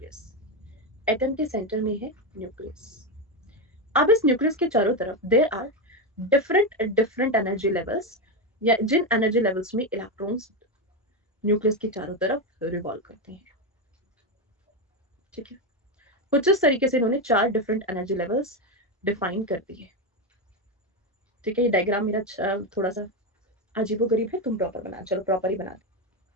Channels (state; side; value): normal; both; correlation 0.10